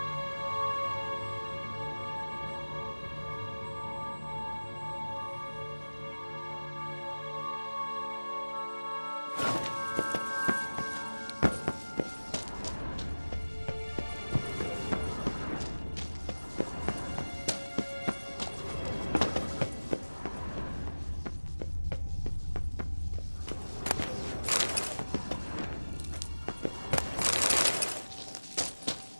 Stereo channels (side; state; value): both; inverted; correlation -1.00